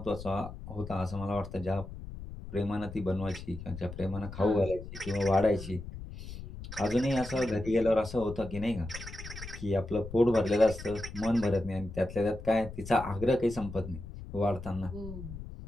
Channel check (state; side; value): noise; left; rumble, 11 dB below the sound